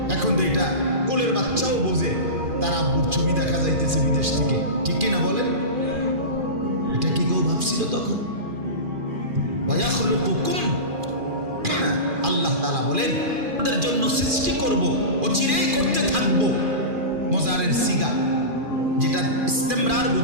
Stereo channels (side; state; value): left; late; 2.4 ms